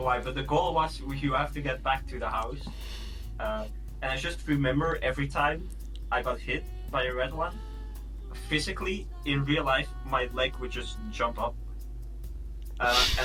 why, but the goal was you have to get back to the house. And I just remember every time I got hit by a red one, physically, in real life, my leg would just jump up.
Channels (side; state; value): both; identical; correlation 1.00